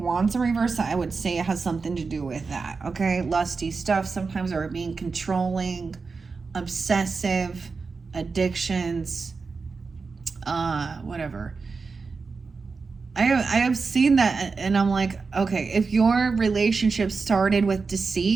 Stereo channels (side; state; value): left; quieter; 4.6 dB